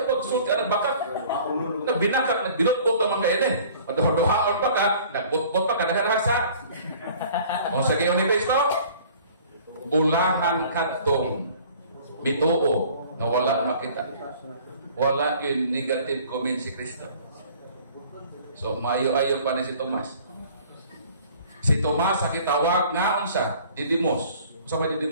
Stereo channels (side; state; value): both; inverted; correlation -0.50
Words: pag-sulti ka nagbakat. Nagbinakat, nagbinutbot naman kayo eh. Maduha-duhaan pa ka, nagbutbot pa ka, nagarasa. O sa gayon ni Kristo, ulahan kadtong bituo na wala makita. Wala yung negative comment si Kristo. So, maayo-ayo pa ni si Tomas. Si Tomas sa kitawag nga unsa? Didymos. Unsa may